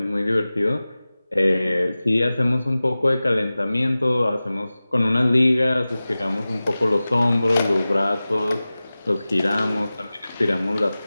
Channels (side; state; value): both; inverted; correlation -0.97